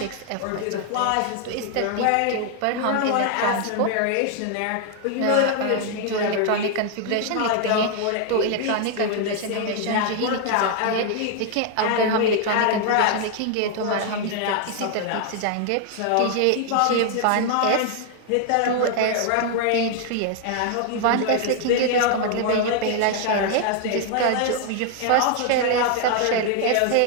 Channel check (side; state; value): both; different; correlation 0.00